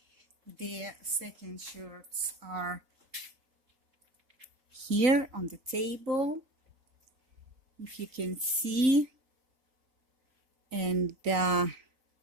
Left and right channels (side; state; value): left; late; 3.9 ms